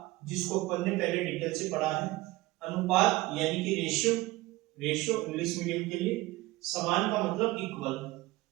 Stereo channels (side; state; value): left; quieter; 19.4 dB